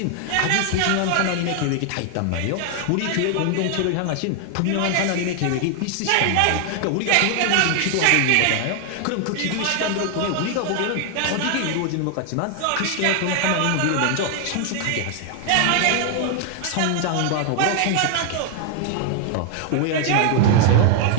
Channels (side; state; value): both; different; correlation 0.00